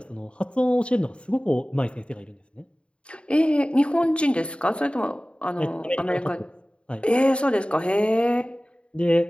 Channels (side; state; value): right; late; 0.057 ms